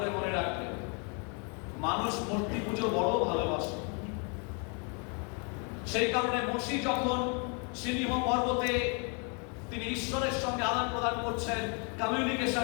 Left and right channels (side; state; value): right; quieter; 36.2 dB